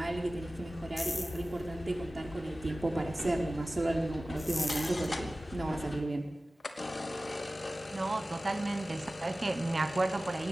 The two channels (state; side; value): normal; both; correlation 0.96